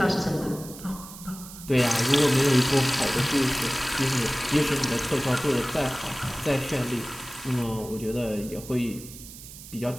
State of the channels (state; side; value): noise; right; hiss, 15 dB below the sound